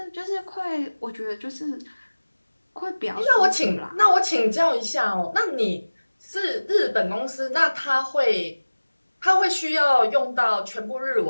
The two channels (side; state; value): both; inverted; correlation -1.00